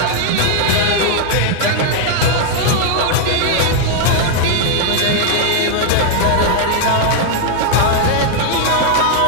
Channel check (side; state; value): both; different; correlation 0.00